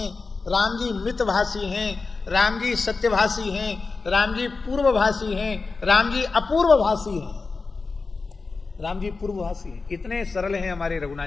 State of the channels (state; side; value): quieter; right; 4.2 dB